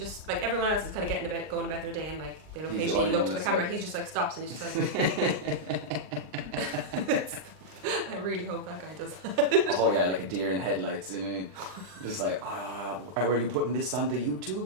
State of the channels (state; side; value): late; left; 39 ms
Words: like everyone else is kind of going about their day, and like they'll occasionally look to the camera. He's just like stops and he's just like. I really hope that guy does that. Oh yeah, like a deer in headlights, you know. Just like, were you putting this on the